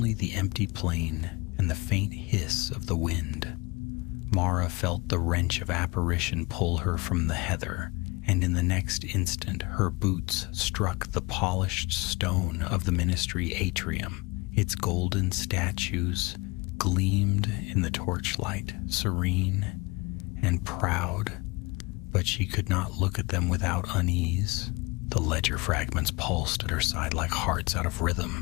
the empty plain and the faint hiss of the wind. Mara felt the wrench of apparition pull her from the heather, and in the next instant her boots struck the polished stone of the ministry atrium. Its golden statues gleamed in the torchlight, serene and proud, but she could not look at them without unease. The ledger fragments pulsed at her side like hearts out of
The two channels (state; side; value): quieter; right; 25.5 dB